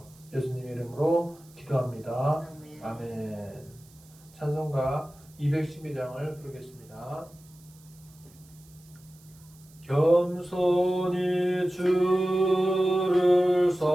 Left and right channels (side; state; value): right; noise; hiss, 27 dB below the sound